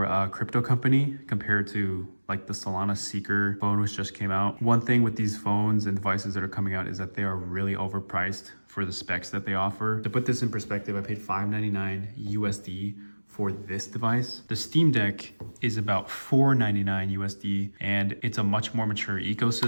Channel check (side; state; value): both; inverted; correlation -1.00